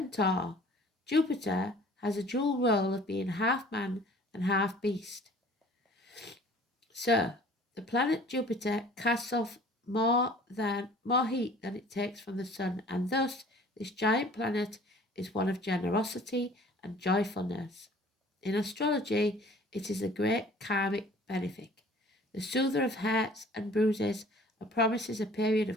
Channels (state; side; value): normal; both; correlation 0.51